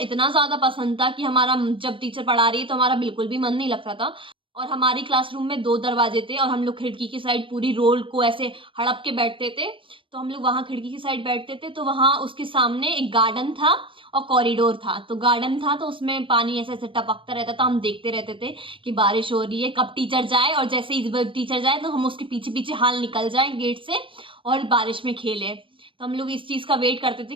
ज्यादा पसंद था कि हमारा जब टीचर पढ़ा रही है तो हमारा बिल्कुल भी मन नहीं लगता था। और हमारी क्लासरूम में 2 दरवाजे थे और हम लोग खिड़की की साइड पूरी रोल को ऐसे हड़प के बैठते थे। तो हम लोग वहां खिड़की की साइड बैठते थे, तो वहां उसके सामने एक गार्डन था और कॉरिडोर था। तो गार्डन था तो उसमें पानी ऐसे ऐसे टपकता रहता था, हम देखते रहते थे कि बारिश हो रही है, कब टीचर जाए, और जैसे ही टीचर जाए तो हम उसके पीछे पीछे हाल निकल जाए गेट से और बारिश में खेले। तो हम लोग इस चीज का वेट करते थे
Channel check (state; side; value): late; left; 0.25 ms